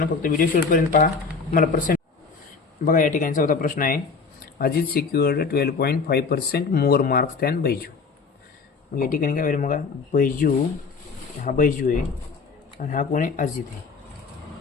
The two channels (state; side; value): quieter; right; 4.9 dB